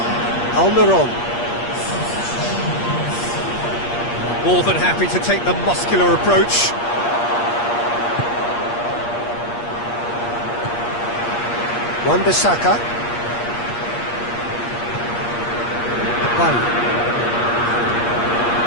Almiron. More than happy to take the muscular approach. Wan-Bissaka. Bye.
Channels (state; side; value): late; right; 8.5 ms